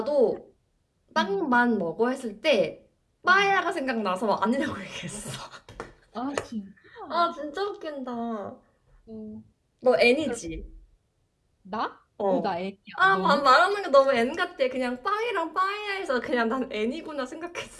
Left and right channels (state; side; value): identical; both; correlation 1.00